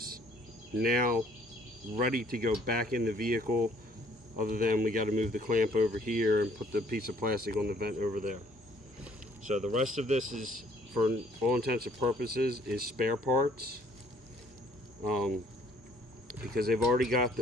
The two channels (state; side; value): normal; both; correlation 0.60